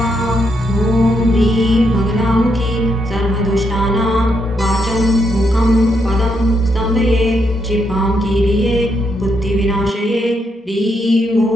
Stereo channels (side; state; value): both; normal; correlation 0.79